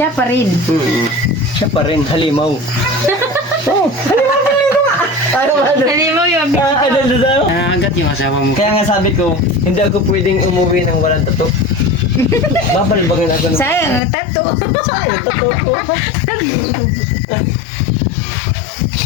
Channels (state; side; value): drops out; right; at 14.0 s